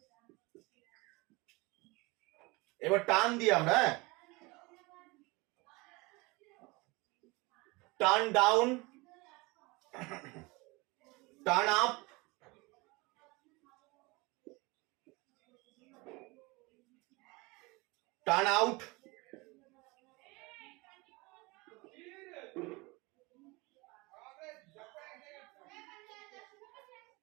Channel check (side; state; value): left; quieter; 24.9 dB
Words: এবার টার্ন দিয়ে আমরা turn down, turn up, turn out,